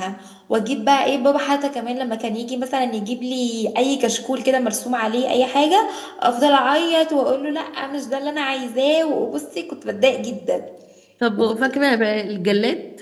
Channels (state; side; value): identical; both; correlation 1.00